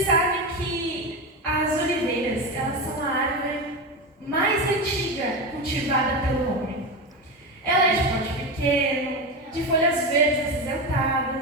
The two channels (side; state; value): both; normal; correlation 0.18